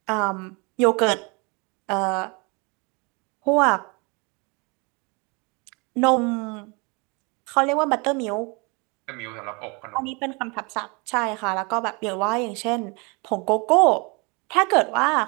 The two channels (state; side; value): quieter; left; 30.0 dB